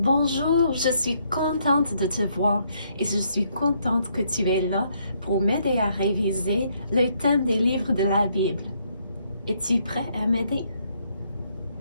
je suis contente de te voir et je suis contente que tu es là pour m'aider à réviser le thème des livres de la Bible. Es-tu prêt à m'aider?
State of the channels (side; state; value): both; inverted; correlation -0.72